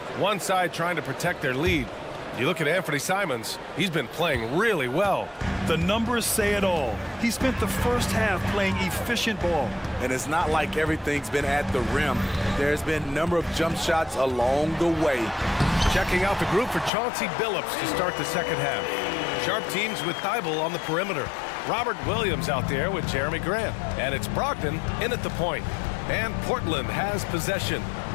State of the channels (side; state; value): right; drops out; at 16.9 s